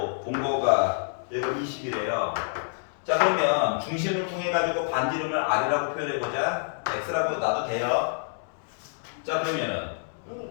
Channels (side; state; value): right; silent; digital silence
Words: 본 거가 얘가 20이래요. 자, 그러면 중심을 통해 가지고 반지름을 R이라고 표현해보자. X라고 놔도 돼요. 자, 그러면